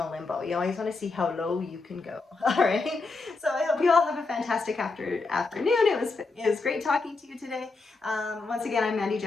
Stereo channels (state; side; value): quieter; right; 3.8 dB